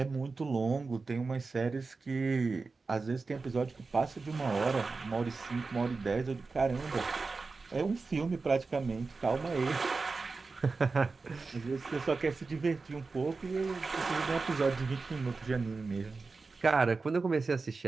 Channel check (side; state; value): left; quieter; 4.1 dB